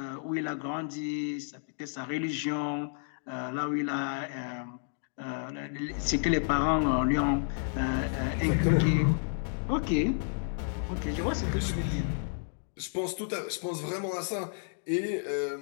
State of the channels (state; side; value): silent; right; digital silence